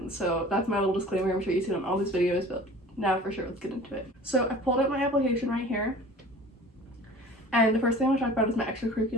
So that's my little disclaimer. I'm sure you've seen on all these videos, but now for sure, let's get into it. So I pulled up my application right here. And the first thing I want to talk about is my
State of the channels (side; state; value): both; normal; correlation 0.43